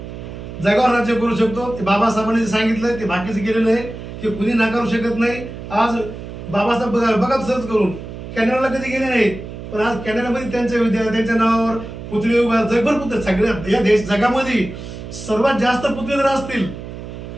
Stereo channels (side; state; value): right; noise; hum, 11 dB below the sound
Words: जगावर राज्य करू शकतो. ते बाबासाहेबांनी जे सांगितलं ते बाकीचं केलेलं आहे, ते कुणी नाकारू शकत नाही. आज बाबासाहेब बघा सर्च करून कॅनडाला कधी गेले नाहीत, पण आज कॅनडामध्ये त्यांच्या नावावर पुतळे उभा, जगभर पुतळे. सगळ्या या जगामध्ये सर्वात जास्त पुतळे जर असतील